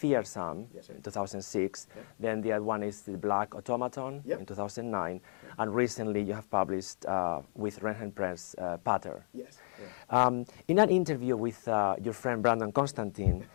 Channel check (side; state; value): right; silent; digital silence